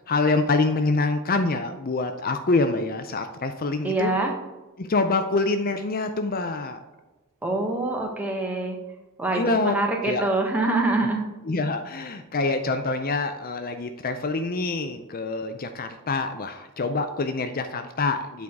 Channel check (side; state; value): both; normal; correlation 0.25